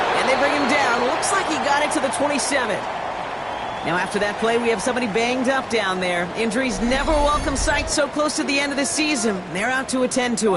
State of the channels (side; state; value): both; identical; correlation 1.00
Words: And they bring him down. Looks like he got it to the 27. Now after that play, we have somebody banged up down there. Injuries never a welcome sight so close to the end of the season. They're out to attend to